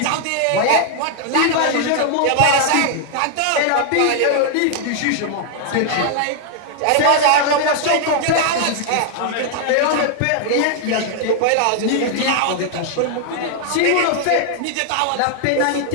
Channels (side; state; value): both; different; correlation 0.00